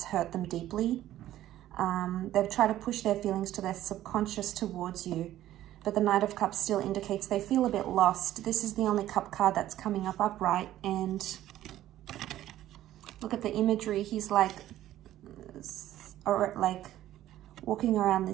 hurt them deeply. They've tried to push their feelings to their subconscious towards you, but the Knight of Cups still indicates they feel a bit lost. This is the only cup card that's coming up upright, and look at the imagery. He's like walking around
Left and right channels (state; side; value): quieter; left; 13.5 dB